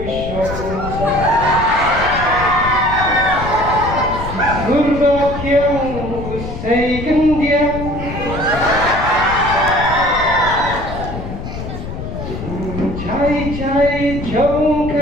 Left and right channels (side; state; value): left; noise; rumble, 8 dB below the sound